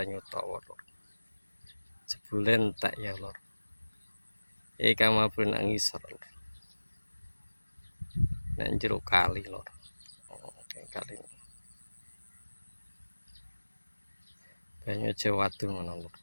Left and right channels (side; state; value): both; inverted; correlation -1.00